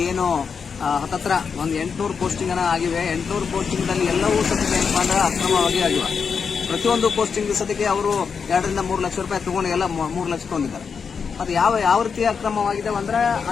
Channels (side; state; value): right; quieter; 6.0 dB